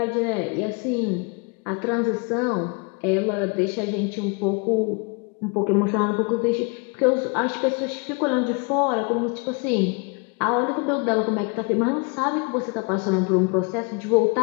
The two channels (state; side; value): quieter; right; 32.9 dB